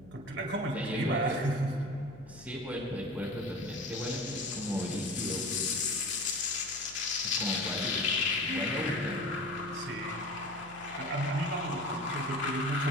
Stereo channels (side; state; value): left; noise; hum, 21 dB below the sound